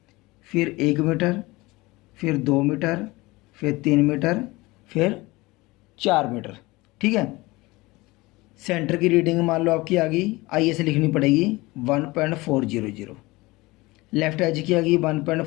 फिर 1 मीटर, फिर 2 मीटर, फिर 3 मीटर, फिर 4 मीटर, ठीक है। सेंटर की रीडिंग मान लो आपकी आ गई, IS लिखनी पड़ेगी 1.400, लेफ्ट एज की आ गई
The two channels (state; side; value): quieter; right; 21.6 dB